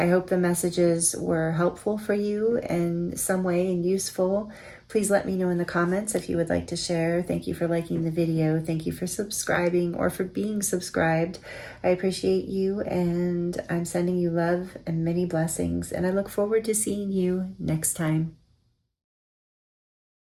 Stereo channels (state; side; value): identical; both; correlation 1.00